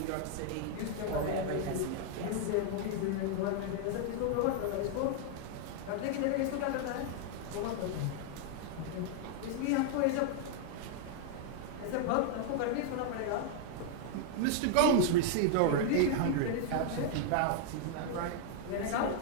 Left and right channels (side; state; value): both; different; correlation 0.00